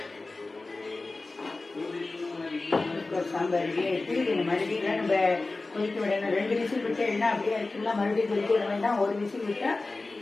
சாம்பார் ரெடியாக எடுத்து இதில் மறுபடியும் நம்ம கொதிக்க விடணும். 2 விசில் விட்டு என்ன அப்படியே இருக்குங்களா? மறுபடியும் கொதிக்க விட வேண்டாம். 1 விசில் விட்டால்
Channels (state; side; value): quieter; right; 3.4 dB